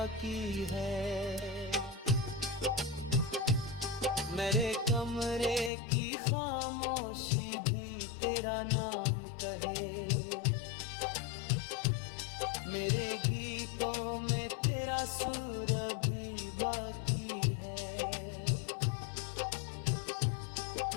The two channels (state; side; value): drops out; right; at 5.7 s